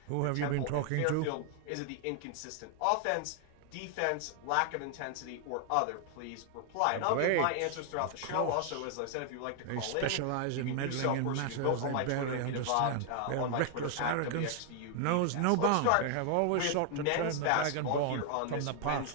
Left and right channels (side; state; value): both; different; correlation 0.00